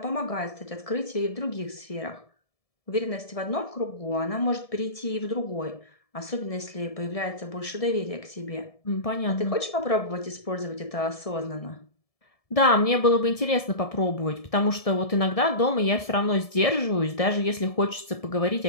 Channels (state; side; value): late; right; 1.7 ms